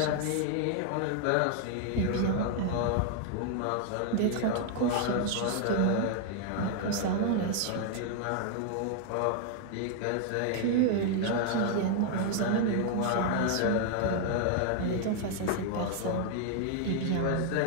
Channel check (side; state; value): both; different; correlation 0.00